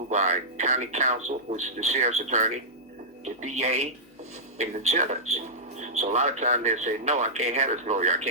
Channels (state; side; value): normal; both; correlation -0.13